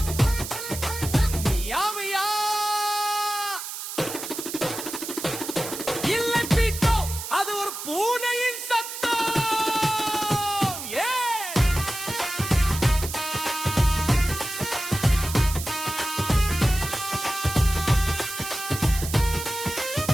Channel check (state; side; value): noise; right; hiss, 8 dB below the sound